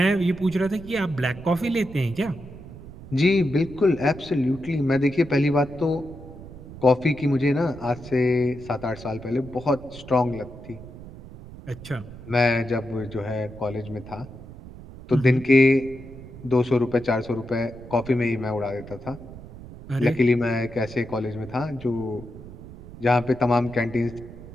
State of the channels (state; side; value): noise; right; rumble, 15 dB below the sound